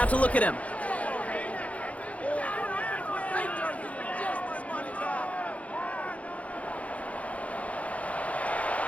to look at him.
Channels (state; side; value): late; right; 0.066 ms